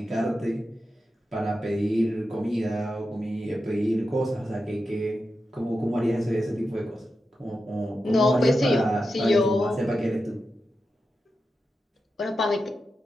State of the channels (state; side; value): normal; both; correlation 0.90